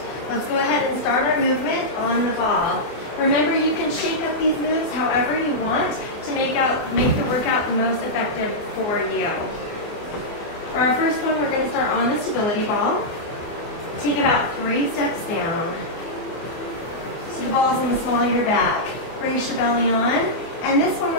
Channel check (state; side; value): late; right; 24 ms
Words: Let's go ahead and start our movement on the ball. Remember, you can shake up these moves however you want to make the workout the most effective for you. For our first one, we're going to start on the stability ball. Take about 3 steps down. So the ball's on the small of your back. Brace your belly on. And this one,